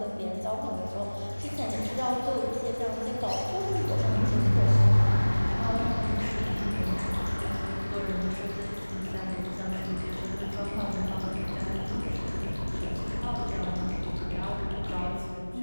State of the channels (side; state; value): both; inverted; correlation -1.00